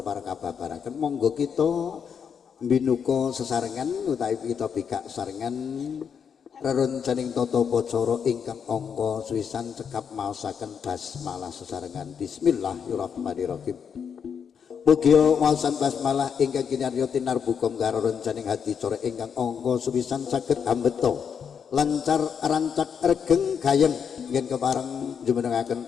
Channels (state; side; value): quieter; right; 7.1 dB